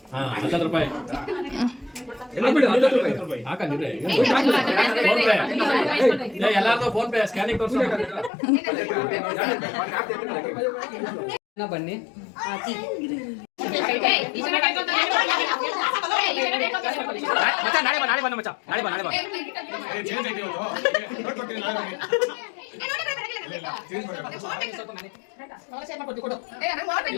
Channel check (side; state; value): right; drops out; at 8.3 s